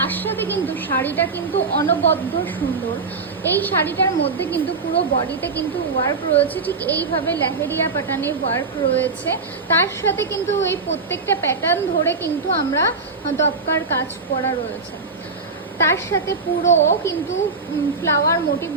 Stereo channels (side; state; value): left; quieter; 4.3 dB